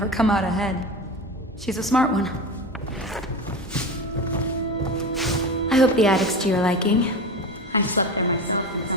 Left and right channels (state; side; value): normal; both; correlation 0.26